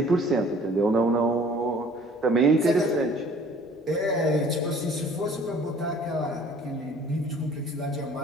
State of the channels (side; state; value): both; normal; correlation 0.52